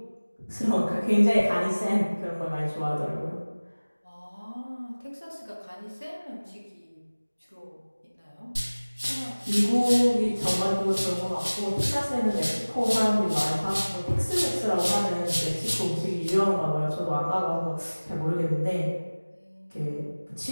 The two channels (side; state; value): both; inverted; correlation -1.00